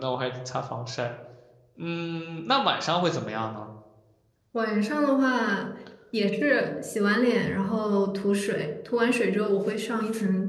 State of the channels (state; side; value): identical; both; correlation 1.00